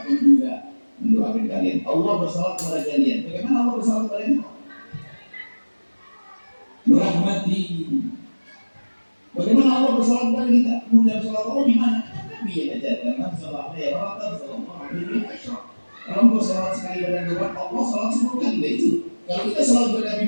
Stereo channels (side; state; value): both; inverted; correlation -1.00